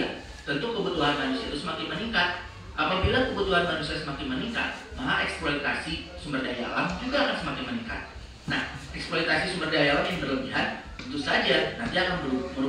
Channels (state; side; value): identical; both; correlation 1.00